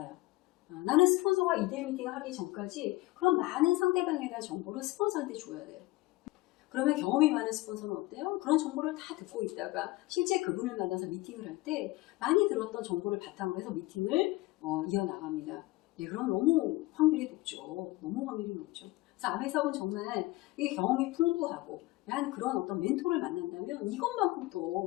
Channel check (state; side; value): quieter; right; 19.8 dB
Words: 나는 스폰서가 2대1 미팅을 하기 전까지 그런 많은 상대방에 대한 정보를 스폰서한테 줘야 돼요. 그러면 경험이 많은 스폰서는 어때요? 그런 정보를 다 듣고 있다가 실제 그분을 만나서 미팅을 할 때 많이 들었던 정보를 바탕으로 해서 미팅을 이어나갑니다. 그럼 너무 확률이 높죠. 너무 확률이 높죠. 그래서 아메 사업은 정말 이게 경험이 풍부하고 한 그런 어떤 멘토를 만난다면 이것만큼